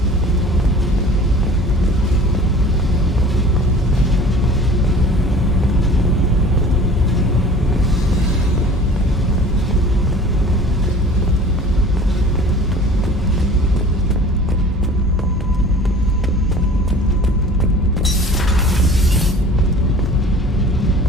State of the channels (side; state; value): both; normal; correlation 0.45